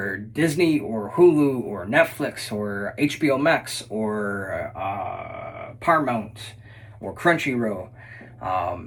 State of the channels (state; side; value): identical; both; correlation 1.00